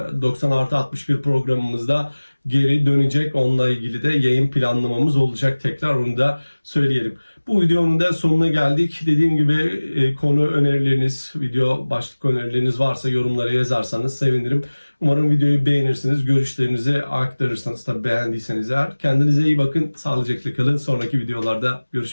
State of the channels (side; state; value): both; inverted; correlation -1.00